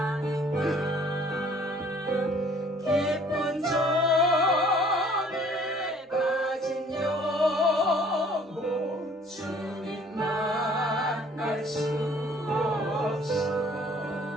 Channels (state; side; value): normal; both; correlation 0.56